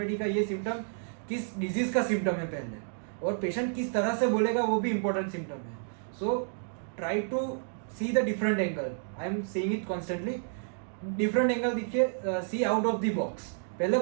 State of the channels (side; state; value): left; silent; digital silence